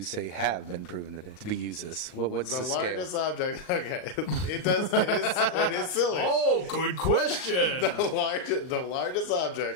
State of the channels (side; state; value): right; late; 39 ms